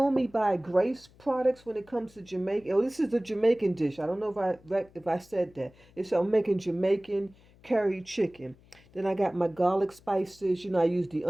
buy Grace products when it comes to Jamaica. Oh, this is a Jamaican dish. I don't know if I said that. I'm making Jamaican curry chicken. Then I got my garlic spices. I use the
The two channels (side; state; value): left; noise; hum, 27 dB below the sound